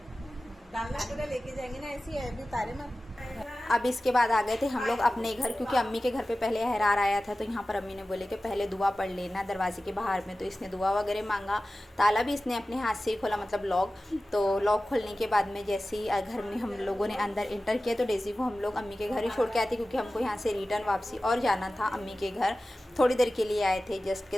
डालना पूरा लेके जाएंगे ना, ऐसी है अभी तारे में। अब इसके बाद आ गए थे हम लोग अपने घर, क्योंकि अम्मी के घर पे पहले अहरार आया था, तो यहाँ पर अम्मी ने बोले कि पहले दुआ पढ़ लेना दरवाजे के बाहर में। तो इसने दुआ वगैरह मांगा, ताला भी इसने अपने हाथ से ही खोला, मतलब लॉक। तो लॉक खोलने के बाद में जैसे ही घर में हम लोगों ने अंदर इंटर किया, तो डेज़ी को हम लोग अम्मी के घर ही छोड़ के आए थे, क्योंकि हमको यहाँ से रिटर्न वापसी और जाना था अम्मी के घर। थोड़ी देर के लिए आए थे, जस्ट के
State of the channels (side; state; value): both; normal; correlation 0.96